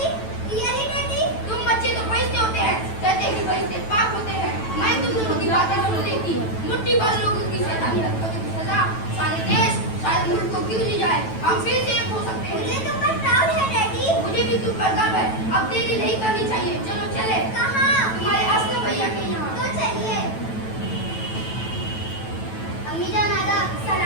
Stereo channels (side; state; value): right; late; 9.1 ms